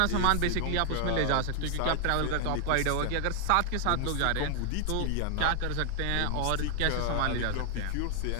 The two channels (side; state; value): both; different; correlation 0.00